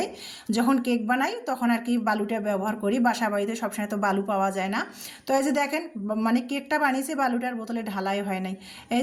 যখন কেক বানাই তখন আর কি বালুটা ব্যবহার করি। বাসা বাড়িতে সবসময় তো বালু পাওয়া যায় না। তো এই যে দেখেন মানে কেকটা বানিয়েছে, বালুটার বোতলে ঢালাই হয় নাই। এই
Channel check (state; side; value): identical; both; correlation 1.00